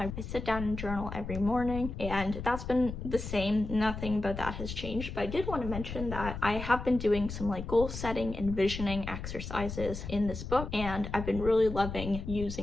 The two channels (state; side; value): noise; left; rumble, 7 dB below the sound